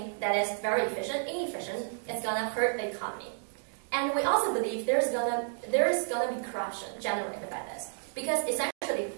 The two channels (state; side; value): silent; left; digital silence